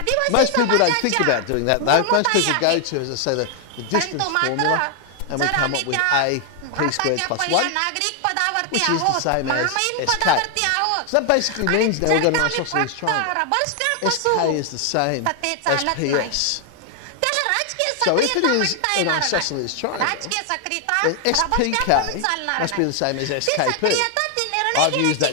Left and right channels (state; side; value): different; both; correlation 0.00